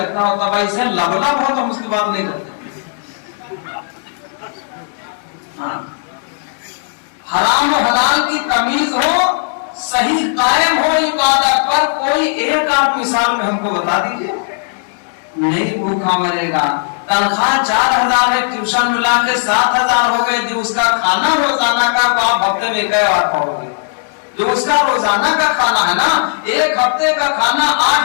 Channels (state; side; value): silent; right; digital silence